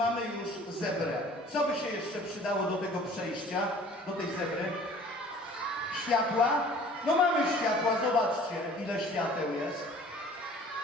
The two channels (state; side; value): normal; both; correlation 0.50